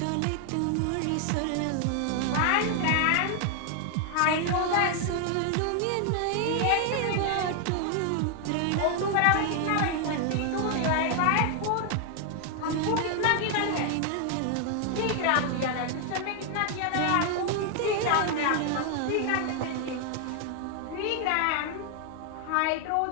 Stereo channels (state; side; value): different; both; correlation 0.00